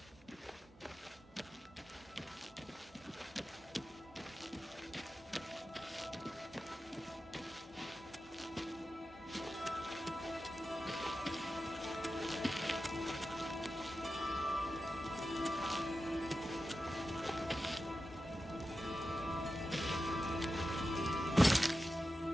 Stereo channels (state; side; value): normal; both; correlation 0.92